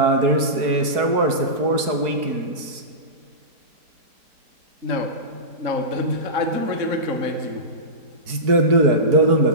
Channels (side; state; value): left; late; 4.6 ms